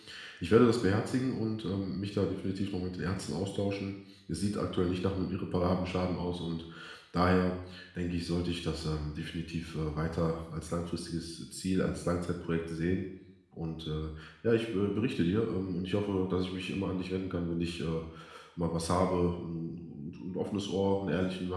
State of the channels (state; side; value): identical; both; correlation 1.00